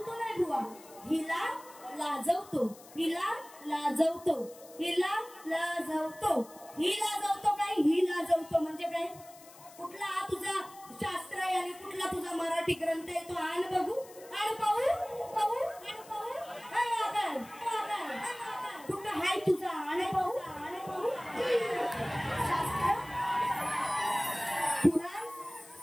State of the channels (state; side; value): noise; left; hiss, 21 dB below the sound